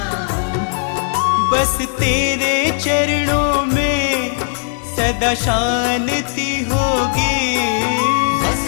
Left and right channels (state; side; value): silent; right; 68 dB below the other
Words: हूँ। बस तेरे चरणों में सदा शांति होगी, बस